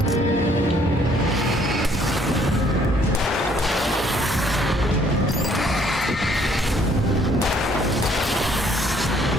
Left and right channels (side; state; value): both; normal; correlation 0.64